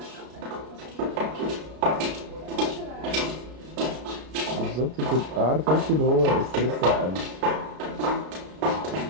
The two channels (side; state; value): left; late; 33 ms